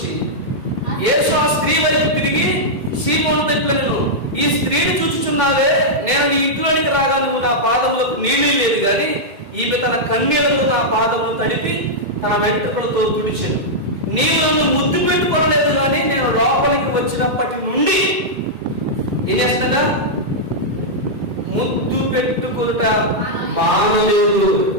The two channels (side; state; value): left; late; 2.1 ms